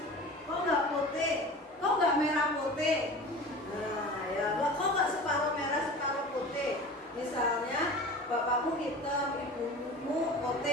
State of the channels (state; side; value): normal; both; correlation 0.36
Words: Kok nggak putih? Kok nggak merah putih? Nah, ya kok nggak separuh merah separuh putih? Misalnya bapakmu hitam, ibumu